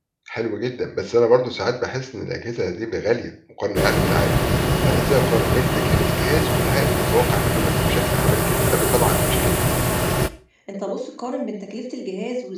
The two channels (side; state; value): both; identical; correlation 1.00